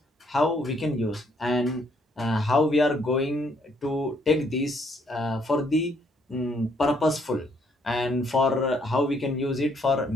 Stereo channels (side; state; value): both; normal; correlation 0.69